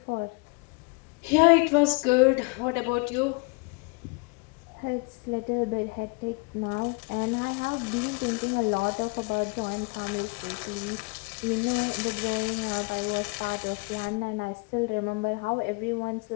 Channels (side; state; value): right; quieter; 30.0 dB